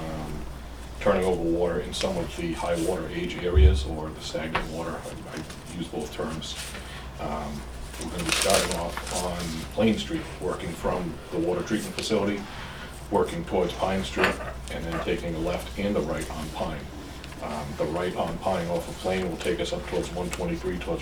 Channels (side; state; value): both; identical; correlation 1.00